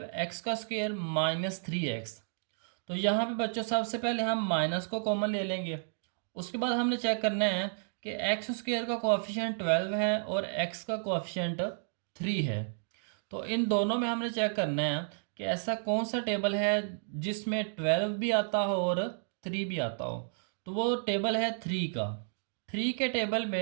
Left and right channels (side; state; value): left; silent; digital silence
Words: - 3x। तो यहाँ पे बच्चों सबसे पहले हम माइनस को कॉमन ले लेंगे। उसके बाद हमने चेक करना है कि x² का कोएफिशिएंट 12 है और x का कोएफिशिएंट 3 है। तो इन दोनों में हमने चेक करना है कि ऐसा कौन सा टेबल है जिसमें 12 भी आता हो और 3 भी आता हो। तो वो टेबल है 3 का। 3 के टेबल